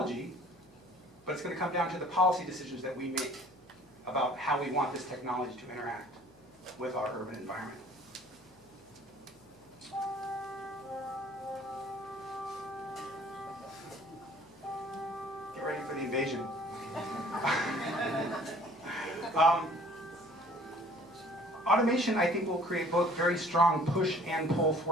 but it's going to come down to the policy decisions that we make about how we want this technology to interact with our urban environment. Get ready for the invasion. Automation, I think, will create both very strong push and pull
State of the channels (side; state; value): left; noise; hum, 29 dB below the sound